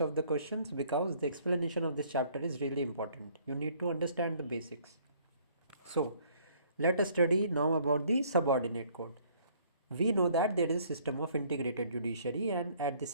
the questions, because the explanation of this chapter is really important. You need to understand the basics. So let us study now about the subordinate code. We know that there is a system of integrated judiciary, and at the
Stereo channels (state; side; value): inverted; both; correlation -0.60